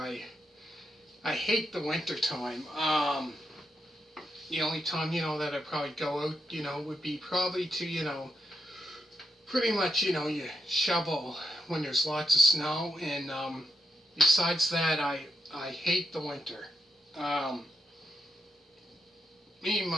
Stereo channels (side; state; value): both; normal; correlation 0.84